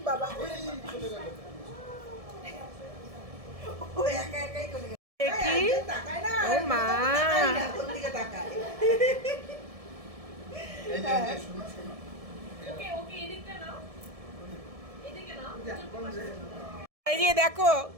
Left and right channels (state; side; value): late; left; 1.7 ms